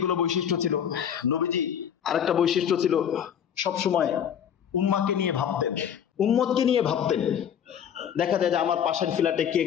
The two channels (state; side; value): quieter; right; 8.7 dB